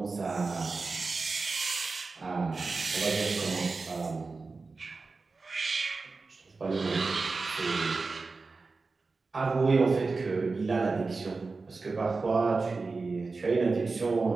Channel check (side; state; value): left; quieter; 4.0 dB